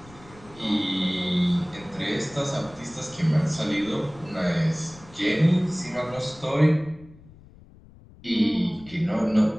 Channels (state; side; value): noise; left; rumble, 22 dB below the sound